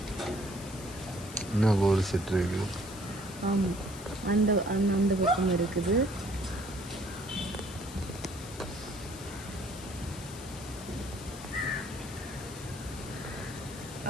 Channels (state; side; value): noise; left; hiss, 15 dB below the sound